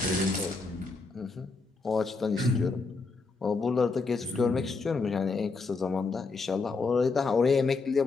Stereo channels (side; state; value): right; quieter; 4.1 dB